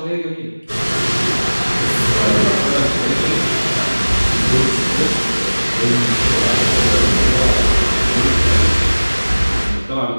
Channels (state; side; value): inverted; both; correlation -1.00